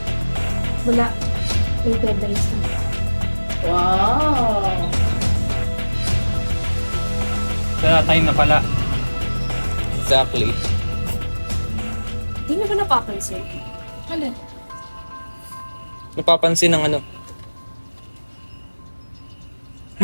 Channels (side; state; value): both; inverted; correlation -1.00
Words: Wala. May deadlines na. Wow! Kaya time na pala. Exactly. Hindi na ba napapansin? Ano? Napapansin ng ano?